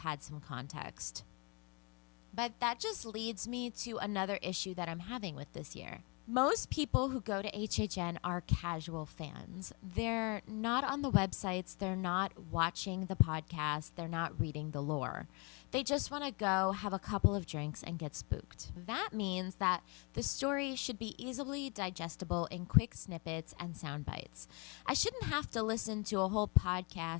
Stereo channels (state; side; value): quieter; right; 31.3 dB